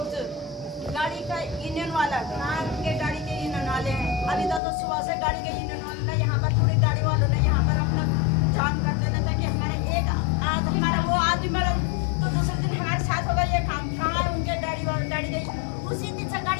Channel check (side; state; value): right; drops out; at 4.6 s